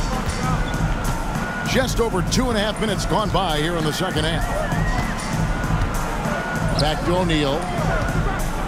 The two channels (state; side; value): identical; both; correlation 1.00